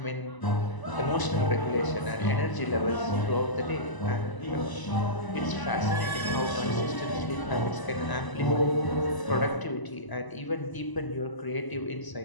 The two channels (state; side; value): late; right; 1.0 ms